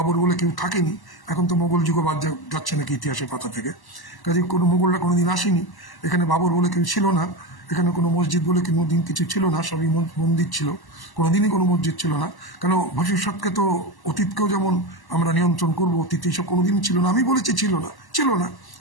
বলে কেউ থাকেনি। এখন তো মোগল যুগও বাদ যাচ্ছে নাকি ইতিহাসের পাতা থেকে, কাজে কোনো মোগলরা কোনোদিন আসেনি। এখানে বাবর বলে কেউ ছিল না, এখানে কোনো মসজিদ বলে কোনোদিন কিছু ছিল না, সবই মন্দির ছিল, কোনোদিনই কোনো মসজিদ ছিল না। কেন ভবিষ্যৎকে তো অতীতকেও যেমন আমরা নিয়ন্ত্রণ করবো, অতীত এইসব কোনোদিনই ছিল না। আমি বলেছি ছিল না,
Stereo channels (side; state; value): right; late; 1.1 ms